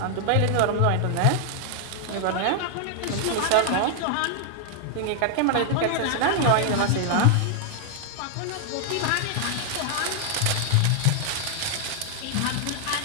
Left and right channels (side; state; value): both; different; correlation 0.00